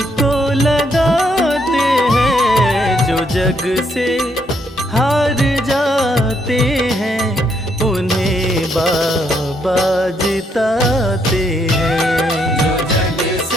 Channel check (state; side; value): normal; both; correlation 0.74